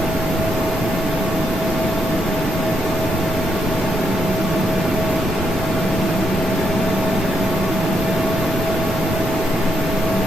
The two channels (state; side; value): normal; both; correlation 0.79